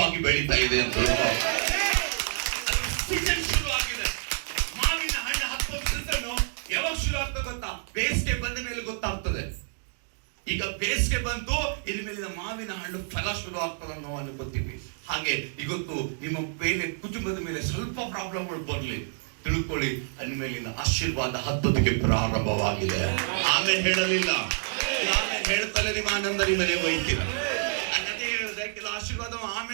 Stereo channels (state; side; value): silent; left; digital silence